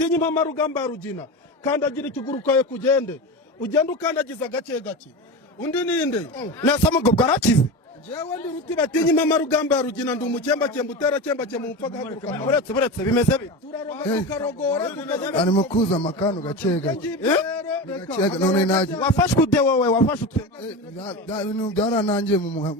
impama rugamba rugina kandagira ikiguru kawe kugende ugenda ukandagiza gake gake undi ninde nasa mugo bwarakize jewe ndi ruti batinya impama rugamba rugina ndi umukemba utera kemba mu mpfa gahaguruka buretse bimeze bite tukarogora arimo kuza amakano gake gake none naje wafashwe ude wowe wafashwe ibintu byaranangiye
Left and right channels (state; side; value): normal; both; correlation 0.24